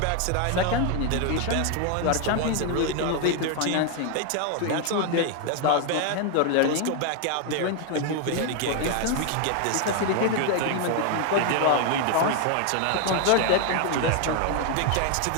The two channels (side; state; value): both; different; correlation 0.01